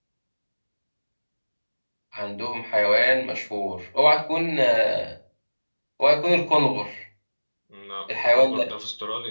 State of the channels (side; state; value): both; inverted; correlation -1.00